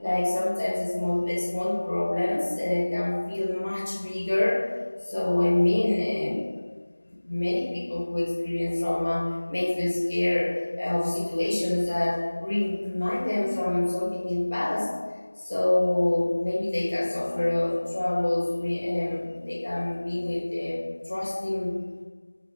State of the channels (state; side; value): inverted; both; correlation -1.00